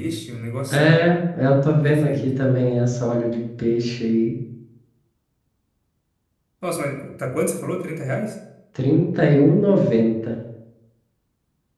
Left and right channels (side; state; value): both; identical; correlation 1.00